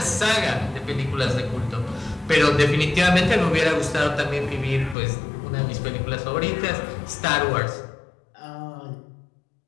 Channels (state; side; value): drops out; right; at 5.0 s